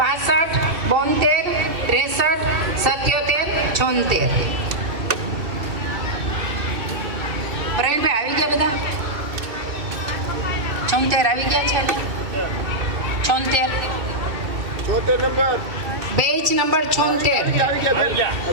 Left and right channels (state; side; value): late; left; 2.6 ms